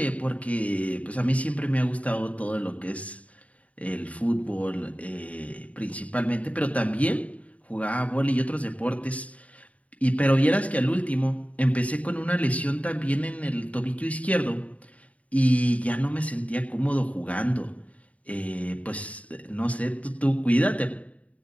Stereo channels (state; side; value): late; right; 0.068 ms